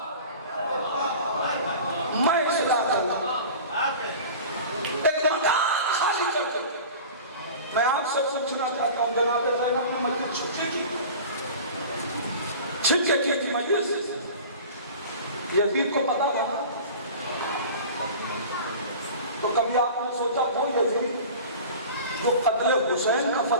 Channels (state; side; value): inverted; both; correlation -0.38